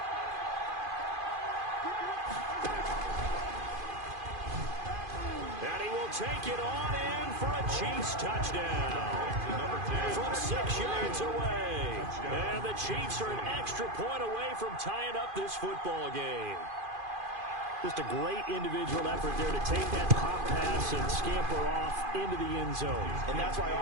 And he will take it on in for a Chiefs touchdown. From 6 yards away. And the Chiefs are an extra point away from tying up this football game. Just a great individual effort there to take that pop pass and scamper off into the end zone. And that's why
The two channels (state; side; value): late; left; 2.5 ms